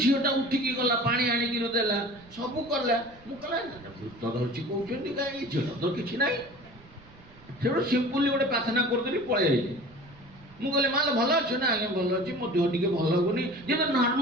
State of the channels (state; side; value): noise; right; rumble, 24 dB below the sound